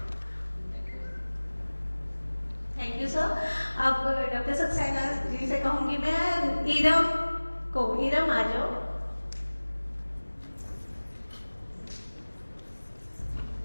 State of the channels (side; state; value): both; inverted; correlation -1.00